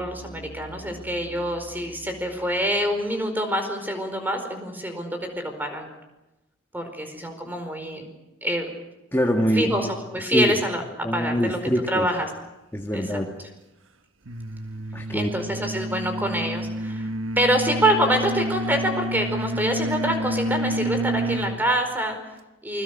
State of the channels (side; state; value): both; normal; correlation 0.55